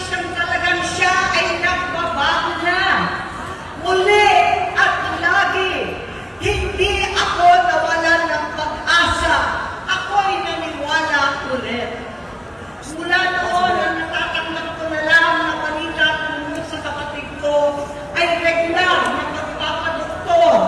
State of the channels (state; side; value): identical; both; correlation 1.00